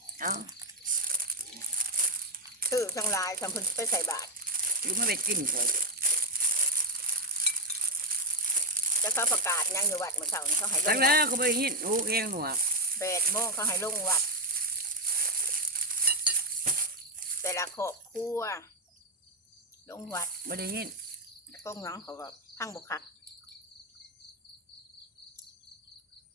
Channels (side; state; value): both; normal; correlation 0.03